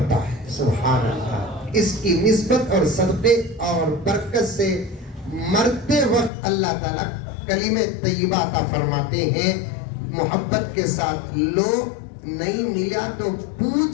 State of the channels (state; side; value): drops out; right; at 6.3 s